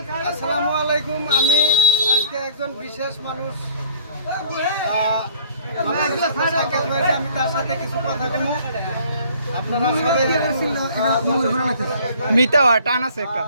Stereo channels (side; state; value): both; inverted; correlation -0.52